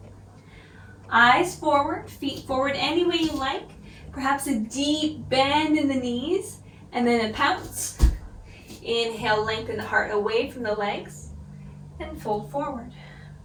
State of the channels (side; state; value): both; identical; correlation 1.00